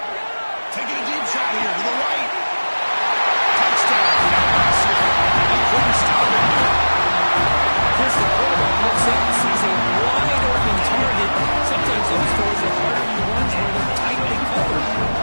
Taking a deep shot here to the right. Touchdown. He couldn't stop it there. Chris, the quarterback looks up and sees a wide open target. Sometimes those throws are harder than ones where they're tightly covered.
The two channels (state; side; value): inverted; both; correlation -1.00